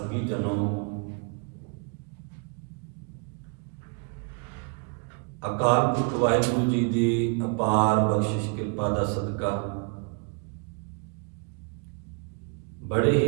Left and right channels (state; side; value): quieter; left; 36.9 dB